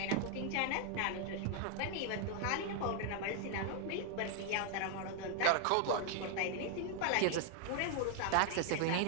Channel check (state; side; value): different; both; correlation 0.00